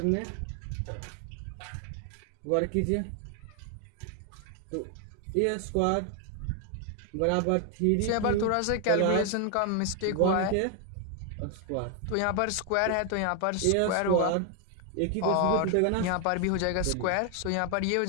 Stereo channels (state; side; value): different; both; correlation 0.00